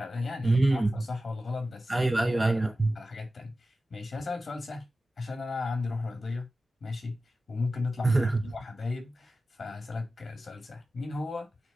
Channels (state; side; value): normal; both; correlation 0.94